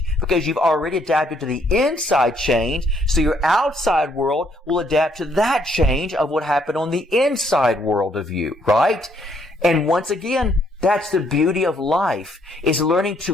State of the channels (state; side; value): normal; both; correlation 0.69